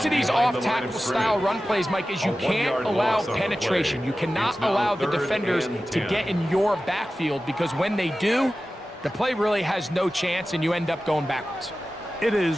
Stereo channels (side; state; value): both; normal; correlation 0.95